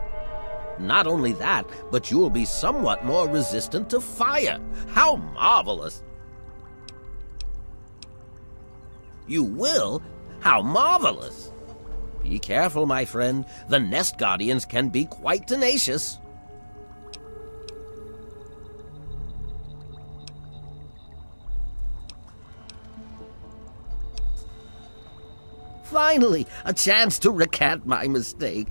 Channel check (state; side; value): inverted; both; correlation -1.00